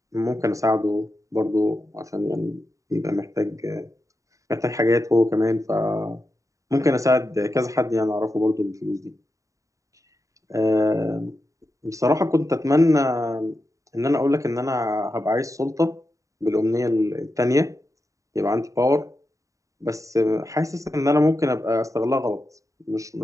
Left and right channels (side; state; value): left; late; 0.16 ms